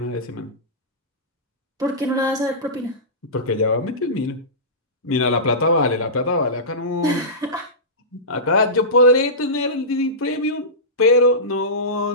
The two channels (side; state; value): both; normal; correlation -0.19